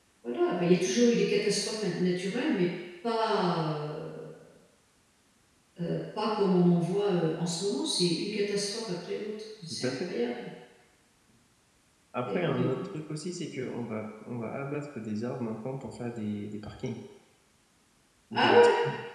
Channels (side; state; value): both; identical; correlation 1.00